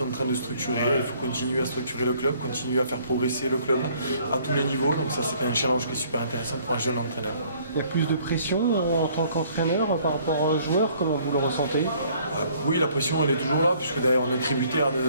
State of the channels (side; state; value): both; inverted; correlation -0.60